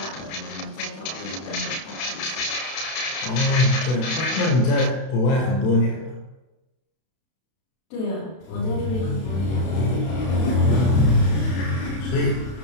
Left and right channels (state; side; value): late; right; 32 ms